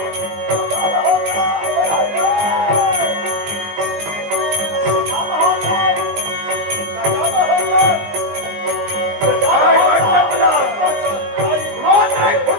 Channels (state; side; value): late; left; 19 ms